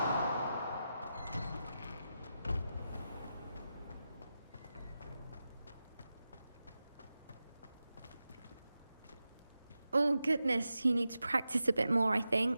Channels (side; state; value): both; inverted; correlation -0.91